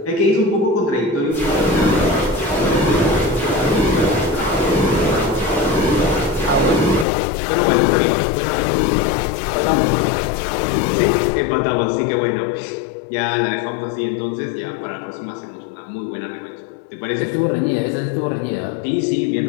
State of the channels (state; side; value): drops out; right; at 7.1 s